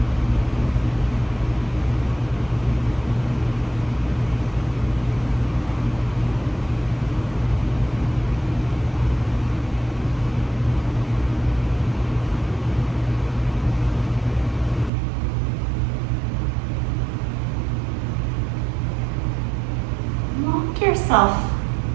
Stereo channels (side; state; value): left; drops out; at 14.9 s